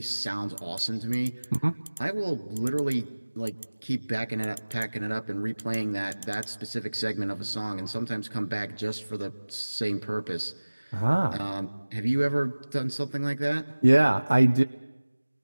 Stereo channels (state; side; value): inverted; both; correlation -1.00